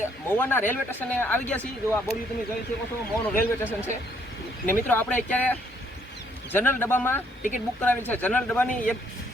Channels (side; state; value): both; normal; correlation 0.68